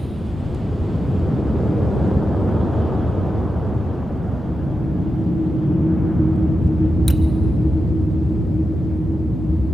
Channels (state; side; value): normal; both; correlation 0.90